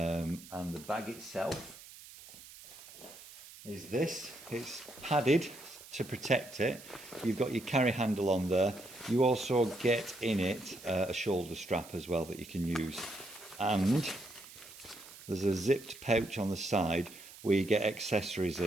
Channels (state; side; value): noise; right; hiss, 18 dB below the sound